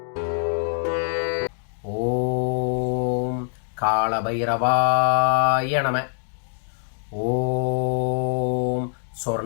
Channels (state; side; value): silent; right; digital silence